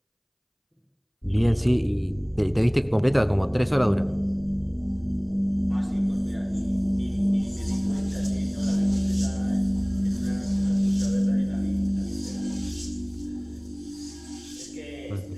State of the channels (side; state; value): both; identical; correlation 1.00